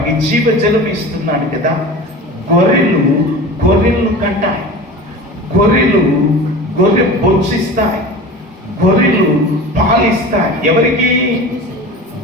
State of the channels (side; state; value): both; normal; correlation 0.35